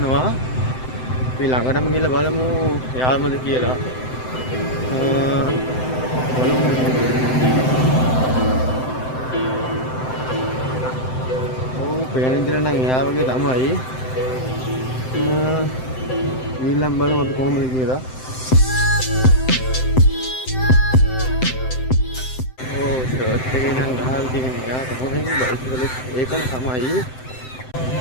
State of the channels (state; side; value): late; right; 7.8 ms